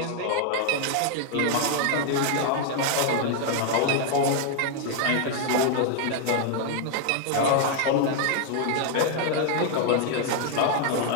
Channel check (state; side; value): different; both; correlation 0.00